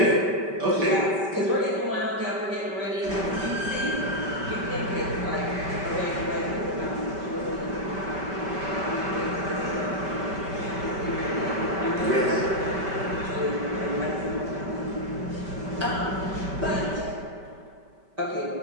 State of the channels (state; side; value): late; left; 5.2 ms